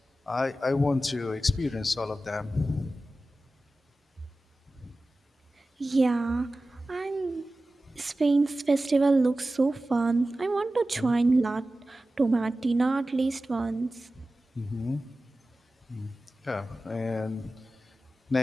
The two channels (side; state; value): both; normal; correlation 0.95